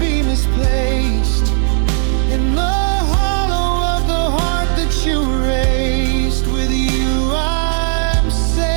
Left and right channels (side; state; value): left; silent; 63 dB below the other